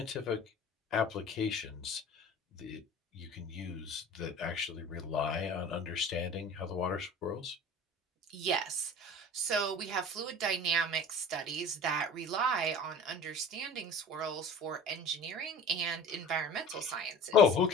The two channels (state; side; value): normal; both; correlation 0.41